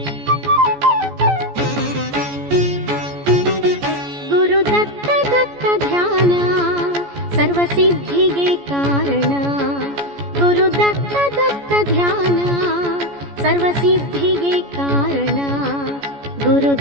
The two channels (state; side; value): late; left; 14 ms